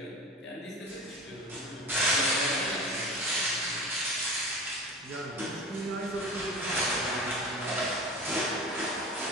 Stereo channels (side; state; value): both; normal; correlation 0.34